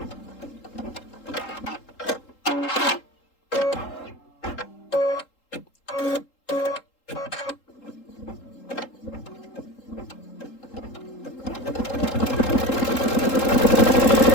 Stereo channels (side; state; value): right; late; 3.8 ms